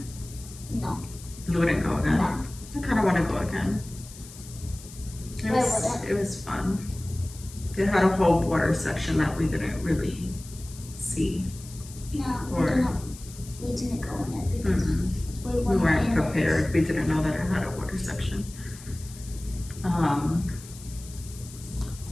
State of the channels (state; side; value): noise; left; hiss, 17 dB below the sound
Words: No. You wouldn't go again? No. I kind of want to go again. I wouldn't. It was fun. It had a whole water section that we didn't really see. No, Or- we didn't go in it because We weren't in prepared. We didn't know that it had a water section.